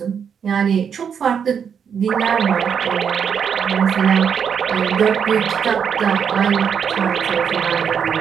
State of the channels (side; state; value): left; quieter; 7.3 dB